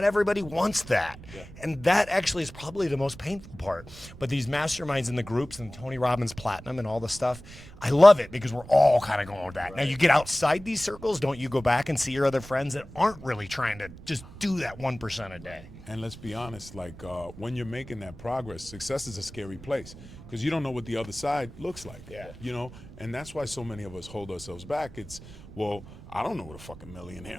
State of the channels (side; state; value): right; noise; rumble, 17 dB below the sound